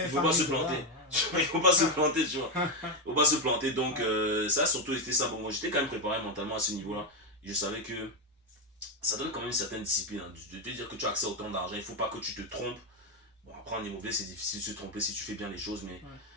ne faut pas se planter. Il ne faut pas se planter, tu vois. Ouais. Il ne faut pas se planter. Donc, ça, surtout, c'était ça. Bon, moi, j'étais quand même préparé mentalement à ce niveau-là. Je savais que ça donne quand même une certaine discipline. Hein, de te dire que tu as accès à autant d'argent. Il ne faut pas que tu te trompes. Bon, après, en immobilier, c'est difficile de se tromper si tu fais bien les choses. Mais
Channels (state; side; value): normal; both; correlation 0.07